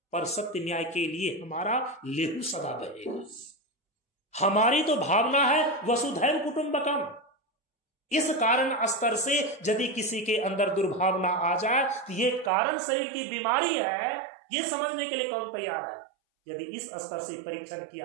पर सत्य न्याय के लिए हमारा लेहू सदा बहेगा। हमारी तो भावना है वसुधैव कुटुंबकम। इस कारण स्तर से यदि किसी के अंदर दुर्भावना आ जाए तो ये कारण शरीर की बीमारी है, ये समझने के लिए कौन तैयार है? यदि इस स्तर से परीक्षण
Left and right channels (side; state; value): left; drops out; at 12.5 s